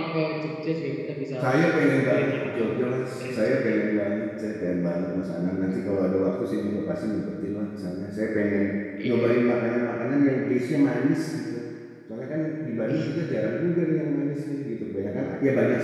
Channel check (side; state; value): both; identical; correlation 1.00